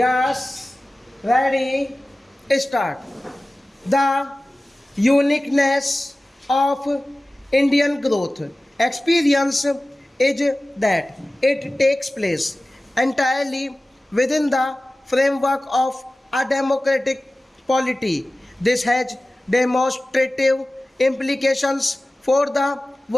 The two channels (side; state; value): both; normal; correlation 0.97